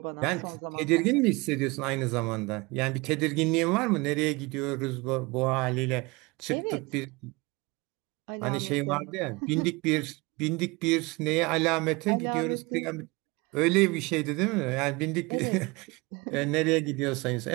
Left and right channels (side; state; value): left; quieter; 25.0 dB